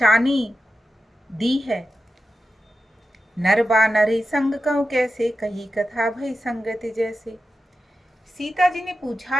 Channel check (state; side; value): normal; both; correlation 0.91